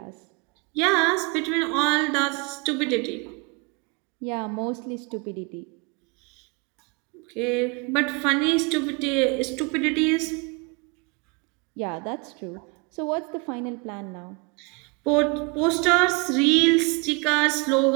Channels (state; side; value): quieter; left; 30.9 dB